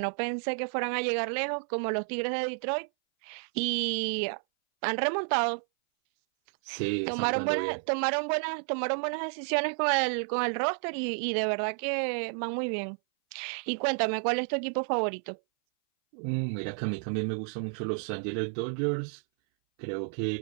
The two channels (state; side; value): silent; left; 57 dB below the other